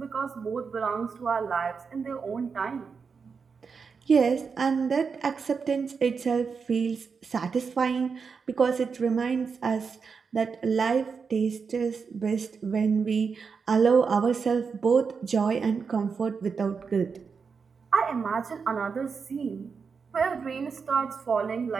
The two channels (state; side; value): quieter; left; 5.5 dB